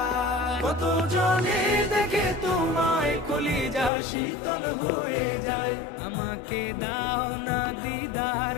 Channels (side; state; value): right; drops out; at 3.9 s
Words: কত জনে দেখে তোমায় কলিজা শীতল হয়ে যায়। আমাকে দাও না দিদার